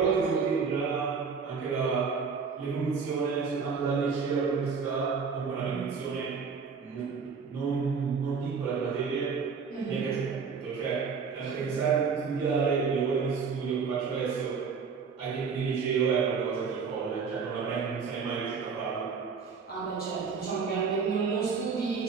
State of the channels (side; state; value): left; quieter; 5.6 dB